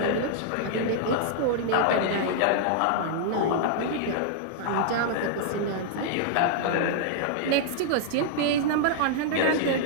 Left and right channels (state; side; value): different; both; correlation -0.01